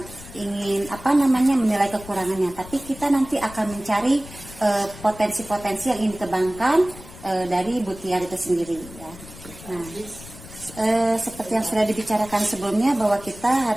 ingin menilai kekurangannya, tapi kita nanti akan mencari potensi-potensi yang ingin dikembangkan dari Bu Tiar itu sendiri ya. Nah, seperti yang sudah dibicarakan sebelumnya, bahwa kita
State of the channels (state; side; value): noise; left; rumble, 17 dB below the sound